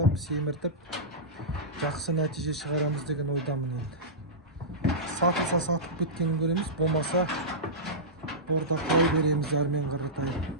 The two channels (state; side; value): normal; both; correlation -0.15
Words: семіртіп, жақсы нәтиже шығарамыз деген ойдамын енді. Сатылса сатып кеткенін көреміз, болмаса бордақылай береміз әрмен қаратай.